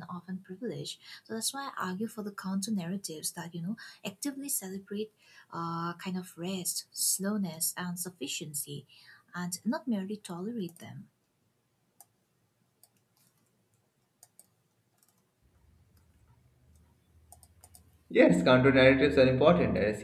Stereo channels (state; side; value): identical; both; correlation 1.00